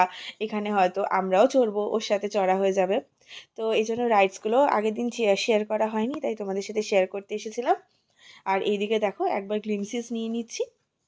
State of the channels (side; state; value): both; identical; correlation 1.00